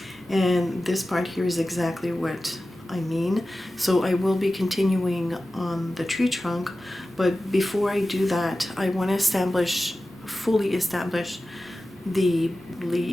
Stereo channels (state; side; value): normal; both; correlation 0.95